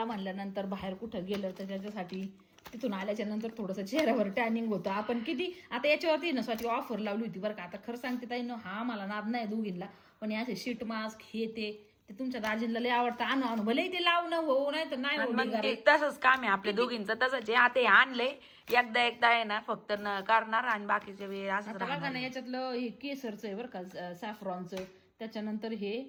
म्हणल्यानंतर बाहेर कुठं गेलं तर त्याच्यासाठी तिथून आल्याच्या नंतर थोडंसं चेहऱ्यावर टॅनिंग होतं. आपण किती आता याच्यावरती ना स्वतः ऑफर लावली होती बरं का. आता खरं सांगते ताई ना, हा मला नाद नाही दोघींना, पण याचे शीट मास्क हे ते तुमच्या दाजींना लय आवडतं. आणू भले ते लावणं हो, नाही तर नाही. तसंच काम आहे आपल्या दोघींचं, तसंच आहे. आता हे आणलंय एकदा आहे ना, फक्त करणार आणि बाकीच्या वेळ असं बघा ना. याच्यातलं हे केसरचं आहे बरं का, सॅफ्रॉनचं. त्याच्यानंतर हे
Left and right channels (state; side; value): identical; both; correlation 1.00